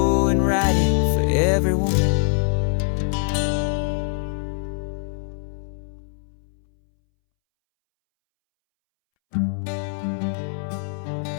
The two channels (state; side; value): silent; right; 63 dB below the other